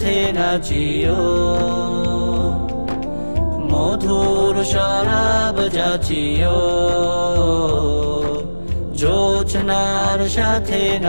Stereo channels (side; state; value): both; inverted; correlation -1.00